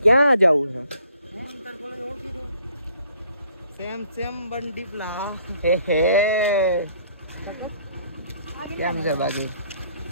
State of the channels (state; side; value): inverted; both; correlation -0.61